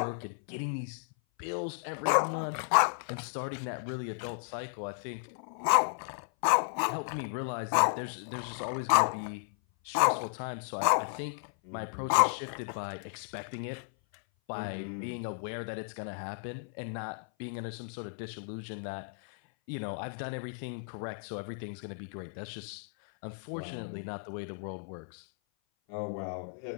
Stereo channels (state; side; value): silent; right; 55 dB below the other